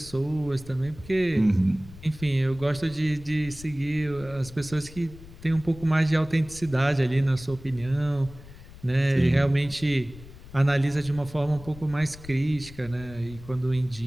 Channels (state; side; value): noise; left; rumble, 17 dB below the sound